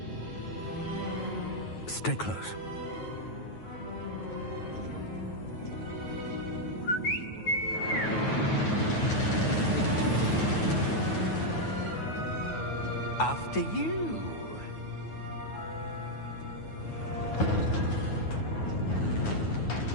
Stay close. After you.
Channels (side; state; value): right; late; 9.3 ms